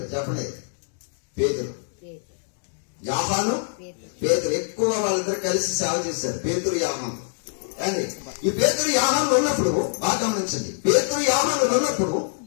చెప్పండి. పేతురు. యోహాను, పేతురు ఎక్కువ వాళ్ళిద్దరు కలిసి సేవ చేశారు. పేతురు, యోహాను. అండి ఈ పేతురు యోహాను ఉన్నప్పుడు బాగా గమనించండి. పేతురు యోహాను ఉన్నప్పుడు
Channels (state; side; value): silent; right; 63 dB below the other